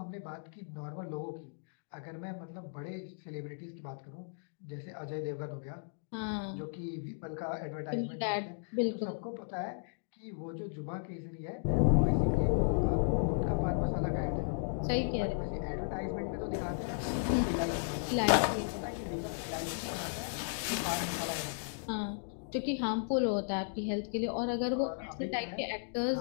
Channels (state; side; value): silent; right; digital silence